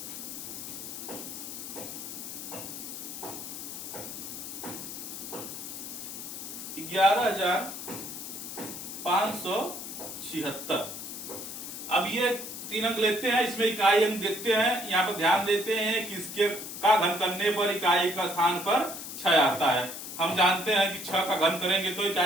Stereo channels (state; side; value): noise; left; hiss, 8 dB below the sound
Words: 11,576। अब ये 3 अंक लेते हैं, इसमें इकाई अंक देखते हैं। यहाँ पर ध्यान देते हैं कि इसके का घन करने पर इकाई का स्थान पर 6 आता है। हम जानते हैं कि 6 का घन करेंगे तो